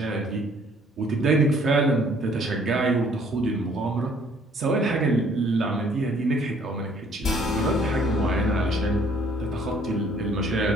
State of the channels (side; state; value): both; normal; correlation 0.60